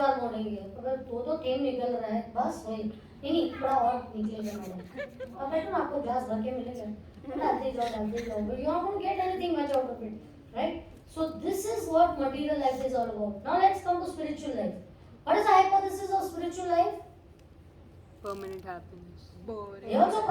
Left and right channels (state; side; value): identical; both; correlation 1.00